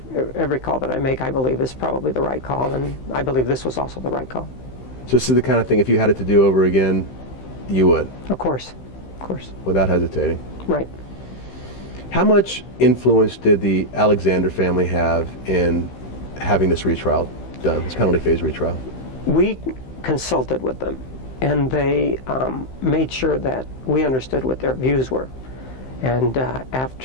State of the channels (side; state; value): right; late; 15 ms